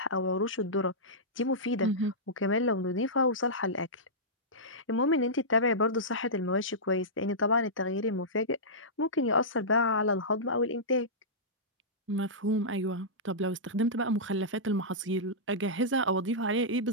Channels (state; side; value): normal; both; correlation -0.15